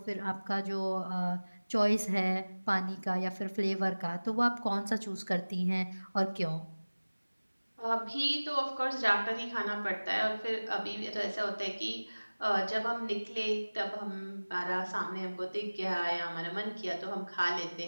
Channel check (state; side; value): inverted; both; correlation -1.00